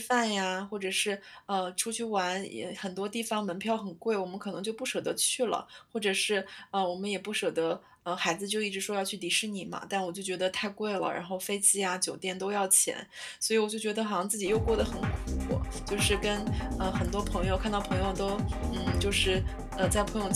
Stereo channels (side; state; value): both; identical; correlation 1.00